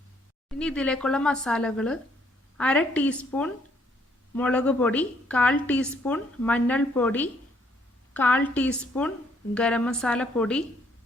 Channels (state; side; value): normal; both; correlation 0.67